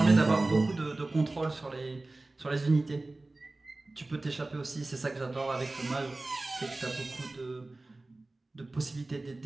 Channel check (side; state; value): left; quieter; 3.0 dB